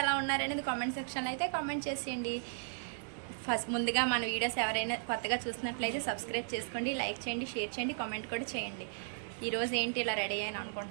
ఎలా ఉన్నారనేది కామెంట్ సెక్షన్లో అయితే కామెంట్ చేసేయండి. ముందుగా మన వీడియోస్ ఎవరైనా కొత్తగా చూసినట్లయితే సబ్స్క్రైబ్ చేసుకోండి, లైక్ చేయండి, షేర్ చేయండి, కామెంట్ కూడా చేయండి. ఈరోజు ఏంటి ఇలా రెడీ అయ్యాను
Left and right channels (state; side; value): silent; left; digital silence